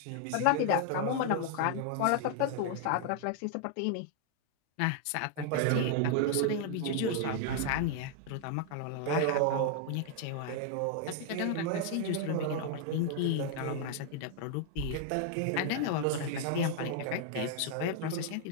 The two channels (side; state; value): both; different; correlation 0.00